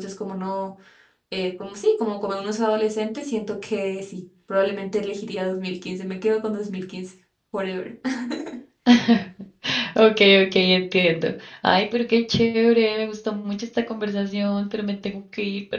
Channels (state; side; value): identical; both; correlation 1.00